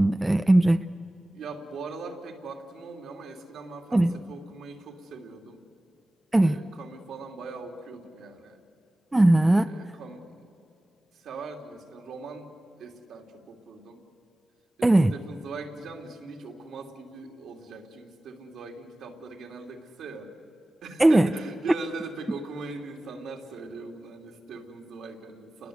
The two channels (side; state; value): both; normal; correlation 0.97